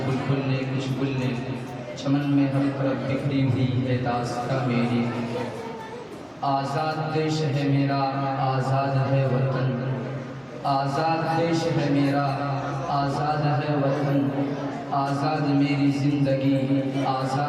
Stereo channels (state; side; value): identical; both; correlation 1.00